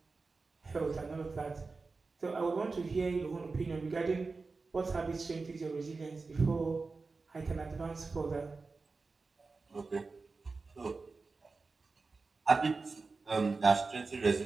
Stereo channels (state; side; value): quieter; left; 4.0 dB